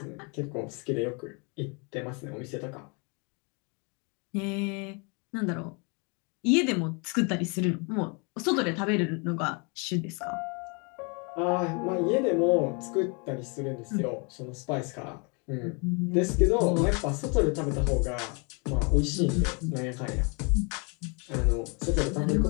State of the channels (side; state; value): right; quieter; 33.4 dB